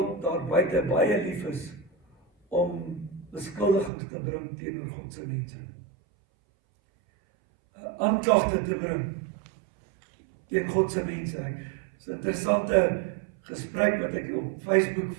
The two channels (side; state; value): left; drops out; at 3.9 s